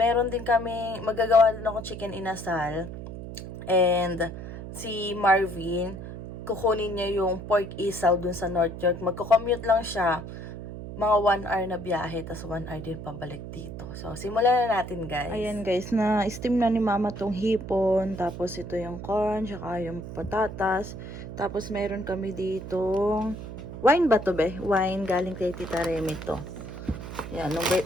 din kami, magagawa din ako chicken inasal. And, si Marvin, kukunin niya yung pork isaw dun sa North York. Magko-commute lang siya. Mga 1 hour na biyahe, tas 1 hour din pabalik dito. So, simulan na natin, guys. Ayan, guys, na-steam na ni mama tong hipon. Tapos, ito yung corn, tsaka yung patatas. Tapos, meron kami ditong wine ba to, be? Wine, galing kay Tita Remy to. Yan,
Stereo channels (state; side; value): noise; right; hum, 10 dB below the sound